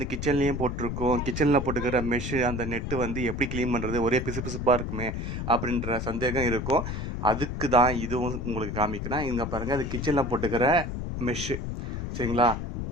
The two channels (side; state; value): left; noise; rumble, 4 dB below the sound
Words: கிச்சன்லேயும் போட்டிருக்கோம். கிச்சனில் போட்டுக்கிற மெஷ்ஷு அந்த நெட்டு வந்து எப்படி க்ளீன் பண்ணுறது? ஒரே பிசுபிசுப்பாக இருக்குமே அப்படின்ற சந்தேகம் இருக்கும். அதுக்கு தான் இதுவும் உங்களுக்கு காமிக்கிறேன். இங்கே பாருங்கள், அது கிச்சனில் போட்டுக்கிற மெஷ்ஷு. சரிங்களா?